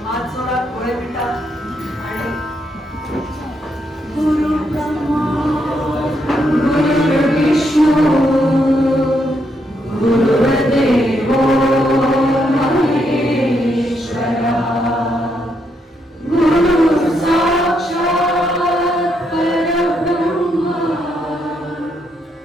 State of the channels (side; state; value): both; normal; correlation 0.78